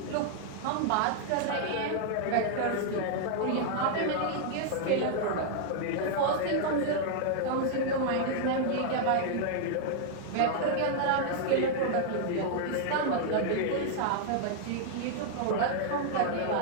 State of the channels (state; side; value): different; both; correlation -0.01